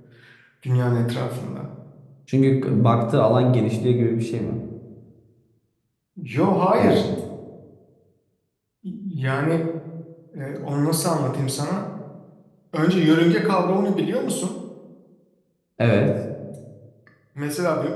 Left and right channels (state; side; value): identical; both; correlation 1.00